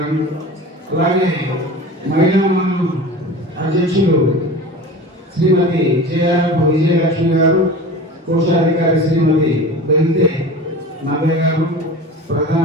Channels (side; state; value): both; normal; correlation 0.35